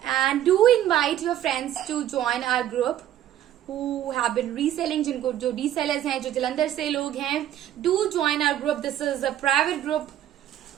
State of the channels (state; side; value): quieter; left; 11.8 dB